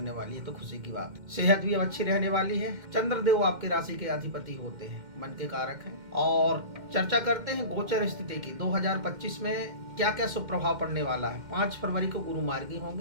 वाली है, तो खुशी की बात। सेहत भी अब अच्छी रहने वाली है। चंद्रदेव आपके राशि के अधिपति होते हैं, मन के कारक हैं। और चर्चा करते हैं गोचर स्थिति की। 2025 में क्या क्या शुभ प्रभाव पड़ने वाला है। 5 फरवरी को गुरु मार्गी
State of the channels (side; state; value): left; late; 2.1 ms